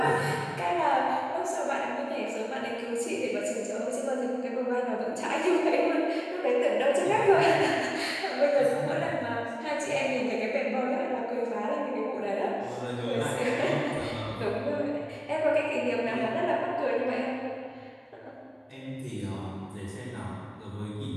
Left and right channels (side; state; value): both; identical; correlation 1.00